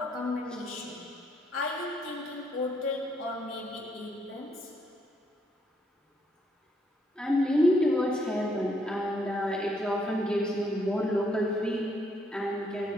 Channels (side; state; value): both; normal; correlation 0.72